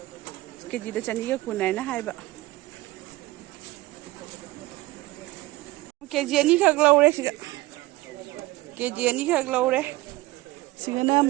केजी दा चनी का कुन है ना है बा केजी नहीं खग लो रे सिगा केजी नहीं खग लो रे सिगना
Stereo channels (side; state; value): left; quieter; 19.3 dB